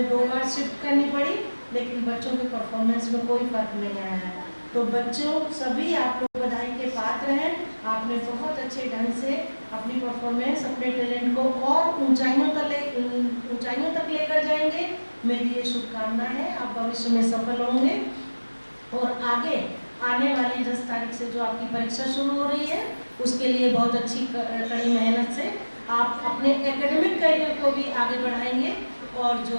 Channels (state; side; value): inverted; both; correlation -1.00